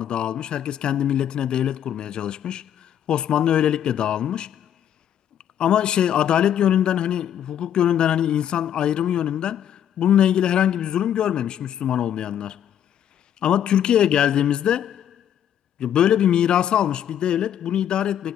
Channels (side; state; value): right; quieter; 10.0 dB